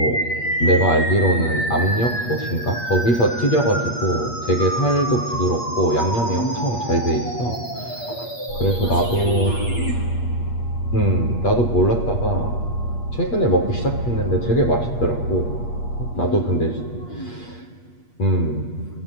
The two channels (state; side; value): late; right; 8.4 ms